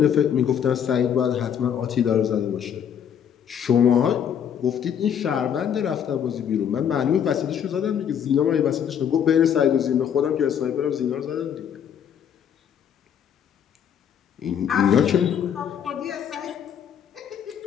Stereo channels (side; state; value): right; quieter; 8.6 dB